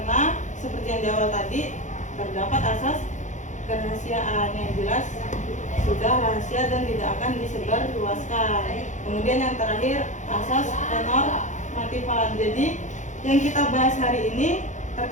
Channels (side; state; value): right; late; 0.35 ms